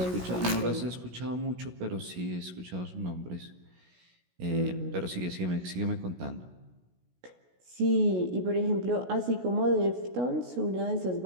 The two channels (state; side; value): late; left; 16 ms